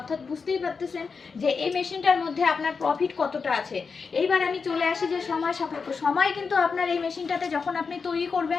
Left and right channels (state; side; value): quieter; right; 5.1 dB